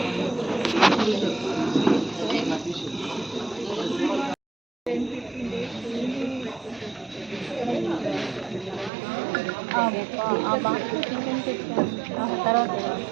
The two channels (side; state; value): left; drops out; at 8.9 s